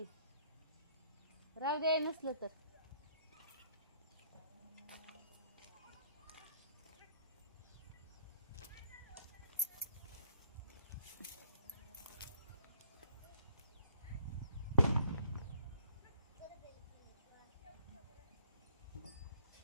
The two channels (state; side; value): inverted; both; correlation -0.65